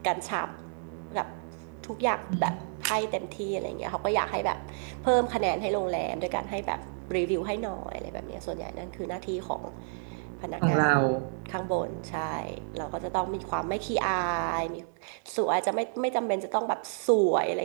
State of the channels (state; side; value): silent; left; digital silence